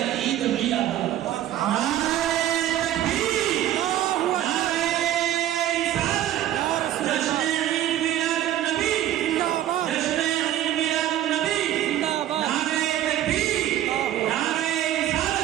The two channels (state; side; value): quieter; left; 12.5 dB